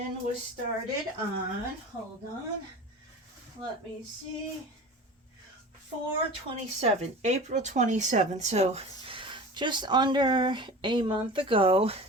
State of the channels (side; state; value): both; normal; correlation 0.35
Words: was started on, hold on, let me see, 4/27, April 27th, so just under a month ago.